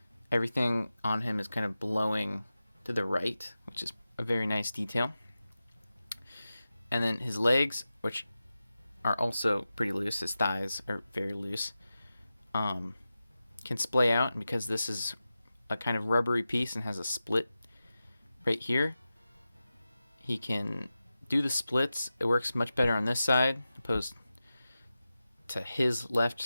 everything on him is kind of blowing to the right, which is a very nice detail. And then his legs, which are also pretty loose, his thighs are very loose, can splay out. And because this is a kind of rubbery piece and has a split right here, he can do the splits. It works much better on this side opposed to his left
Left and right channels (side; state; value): both; inverted; correlation -0.94